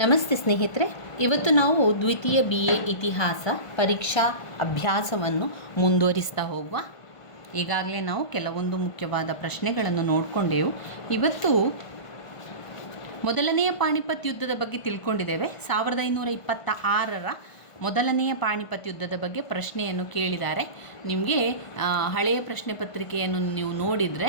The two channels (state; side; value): late; right; 1.5 ms